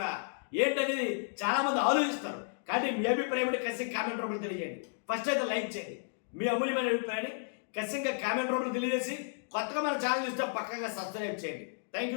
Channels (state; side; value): silent; right; digital silence